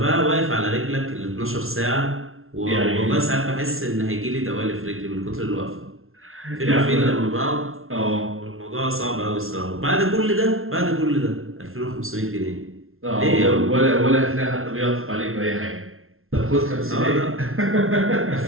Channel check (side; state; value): left; late; 0.61 ms